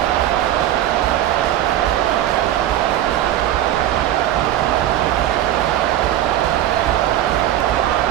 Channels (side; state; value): left; quieter; 12.5 dB